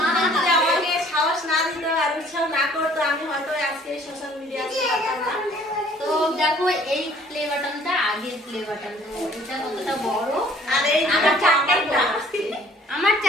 যদি আমাকে সাহস না দিত আর উৎসাহ না করতো, আমি হয়তো আজকে সোশ্যাল মিডিয়া আসতে পারতাম না। তো দেখো এই প্লে বাটনটা আগের প্লে বাটন, এটা কতটা বড়। আর এই আমার চারটাই বড়। আমার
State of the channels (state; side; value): normal; both; correlation 0.56